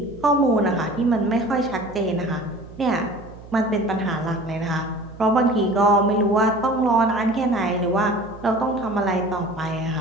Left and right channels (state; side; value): noise; right; hum, 18 dB below the sound